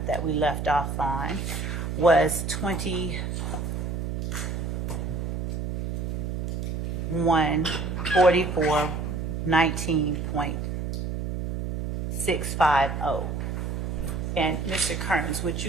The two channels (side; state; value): right; noise; hum, 2 dB below the sound